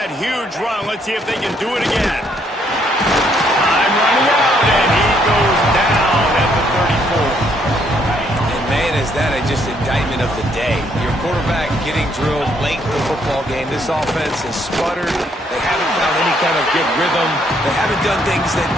huge run, let's see if they can do it again. Time running out, and he goes down at the 34. And, man, is that just indictment of the day. Your quarterback getting drilled late in the football game. This offense has sputtered. They haven't found any kind of good rhythm. They haven't done things that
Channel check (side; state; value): both; normal; correlation 0.70